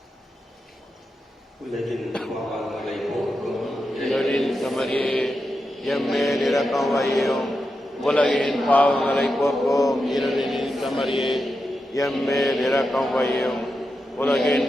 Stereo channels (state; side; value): normal; both; correlation 0.88